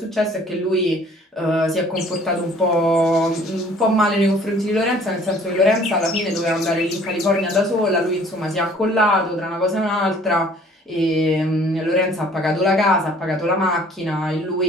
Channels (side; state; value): both; normal; correlation 0.55